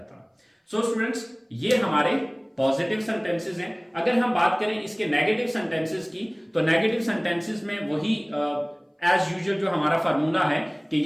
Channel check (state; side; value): identical; both; correlation 1.00